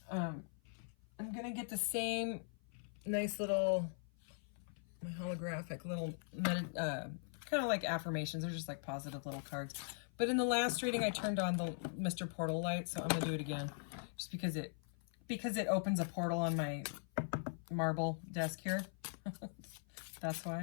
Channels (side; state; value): right; silent; 50 dB below the other